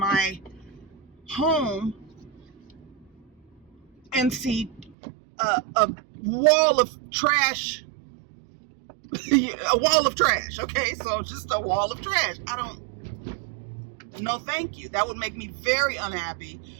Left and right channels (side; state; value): left; drops out; at 5.0 s